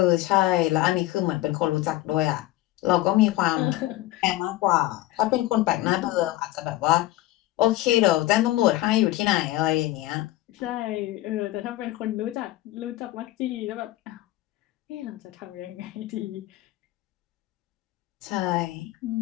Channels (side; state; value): right; quieter; 16.3 dB